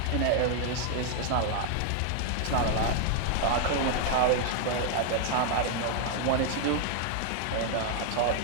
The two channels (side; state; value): both; different; correlation 0.00